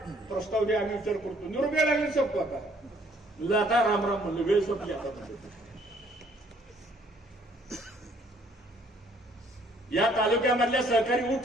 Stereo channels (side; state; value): both; normal; correlation 0.63